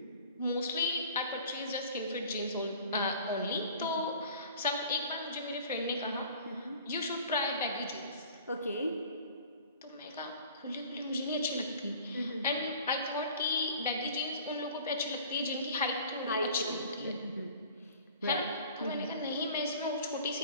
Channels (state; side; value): inverted; both; correlation -0.46